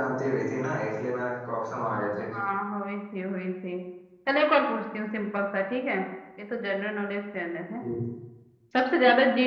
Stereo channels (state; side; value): identical; both; correlation 1.00